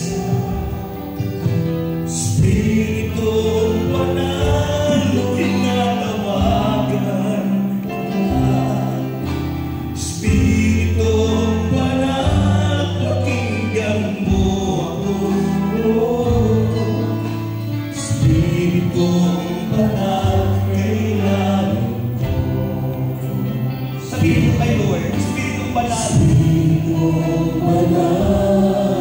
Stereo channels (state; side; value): identical; both; correlation 1.00